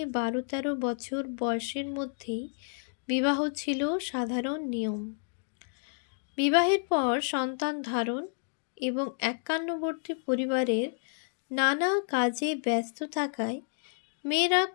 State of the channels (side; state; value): right; silent; digital silence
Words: 12-13 বছর বয়সের মধ্যেই বিবাহ ছিল সাধারণ নিয়ম। বিবাহের পর সন্তান ধারণ এবং একান্নবর্তী পরিবারের নানা কাজে ব্যস্ত থাকায় মেয়েরা